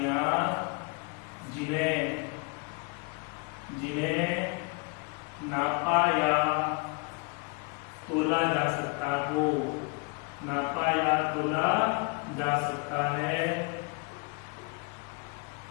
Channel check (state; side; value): quieter; right; 31.4 dB